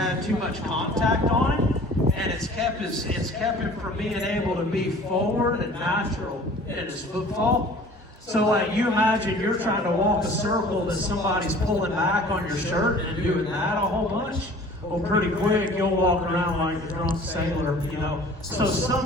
too much contact on him, and it's kept him from being able to be forward and natural in his footfall. So like you imagine you're trying to walk a circle that somebody's pulling back on your shirt and doing that a whole bunch. Well, pretty quick you'll walk around like a drunk sailor, you know. So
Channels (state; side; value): normal; both; correlation 0.47